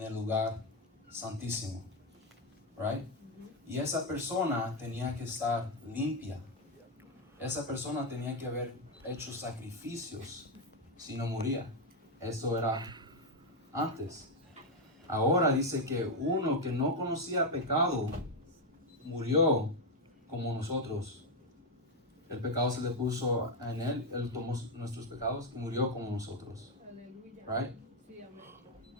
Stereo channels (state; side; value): normal; both; correlation 0.05